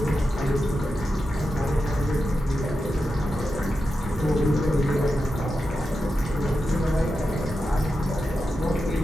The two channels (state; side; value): normal; both; correlation 0.89